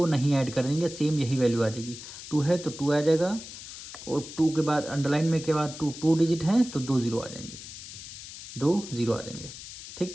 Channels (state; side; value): noise; left; hiss, 12 dB below the sound